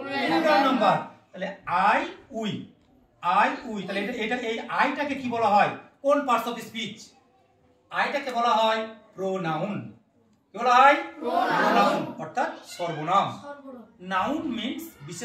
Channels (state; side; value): identical; both; correlation 1.00